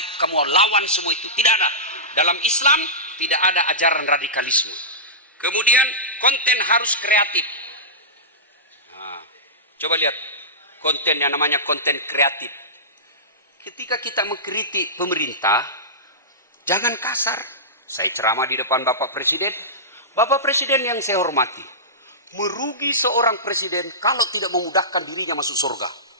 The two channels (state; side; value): normal; both; correlation -0.18